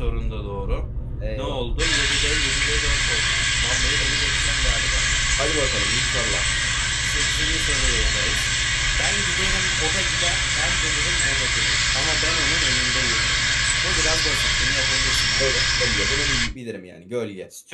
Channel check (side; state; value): both; identical; correlation 1.00